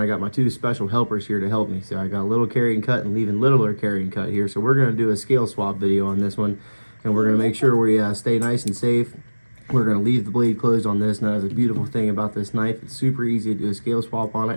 got my two special helpers here to help me. So I got a little Carryandcut and even littler Carryandcut here. So we're going to do a scale swap video on this one, and we're going to make sure we stay nice and safe. We're going to leave the blade closed on this. Now, that's a beautiful thing about this knife. It's super easy to do a scale swap on it,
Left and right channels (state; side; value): inverted; both; correlation -1.00